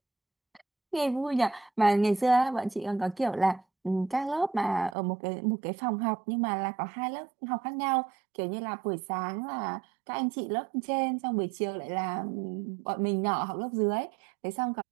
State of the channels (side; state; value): left; drops out; at 5.0 s